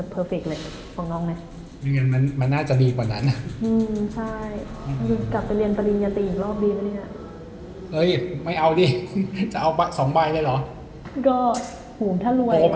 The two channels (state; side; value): identical; both; correlation 1.00